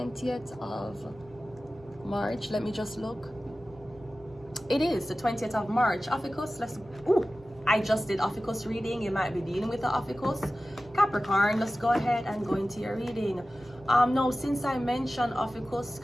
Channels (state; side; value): normal; both; correlation 0.95